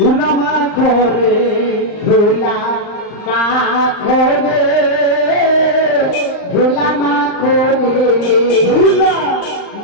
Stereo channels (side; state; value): right; late; 39 ms